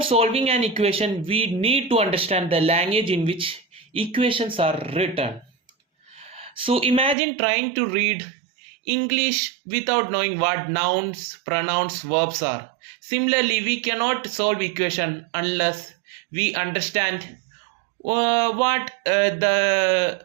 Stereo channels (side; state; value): left; drops out; at 7.2 s